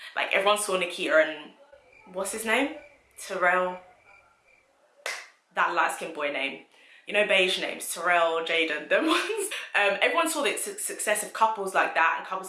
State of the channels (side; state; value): both; identical; correlation 1.00